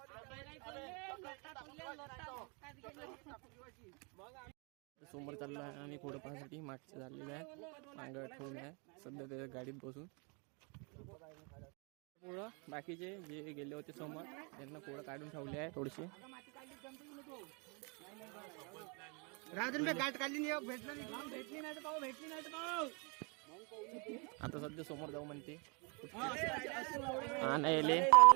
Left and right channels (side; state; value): left; quieter; 33.4 dB